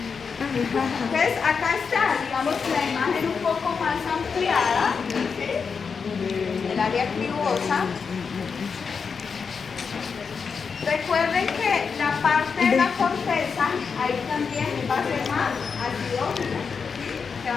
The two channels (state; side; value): quieter; right; 5.7 dB